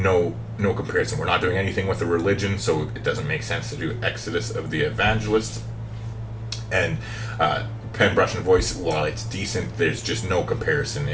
comparison. We're not doing anything with the religion, so it doesn't make sense to do Exodus of the Evangelists. And Pen, Brush, and Voice, while it's decent, there's just no comparison.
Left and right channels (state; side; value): identical; both; correlation 1.00